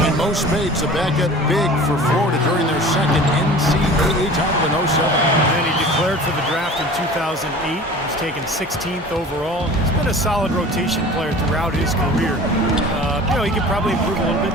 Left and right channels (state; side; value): normal; both; correlation 0.41